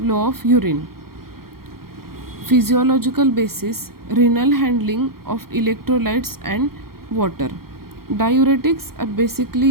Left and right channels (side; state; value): left; late; 0.93 ms